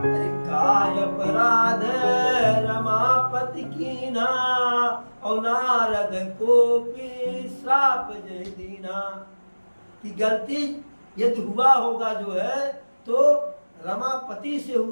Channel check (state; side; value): inverted; both; correlation -1.00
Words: अरे काय अपराध रमापति कीना, और नारद को भी श्राप जय दीना। कि गलती यदि हुआ होगा जो है तो रमापति से